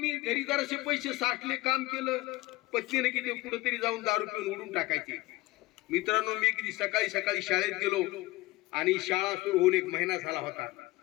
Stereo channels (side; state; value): right; quieter; 19.8 dB